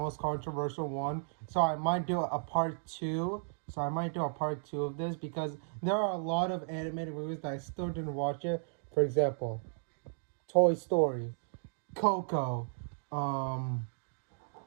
controversial one. So I might do a part 2. So I might do a part 2 of this because there are a lot of animated movies that I still didn't watch it. For example, Toy Story, Coco, I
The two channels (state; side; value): silent; left; digital silence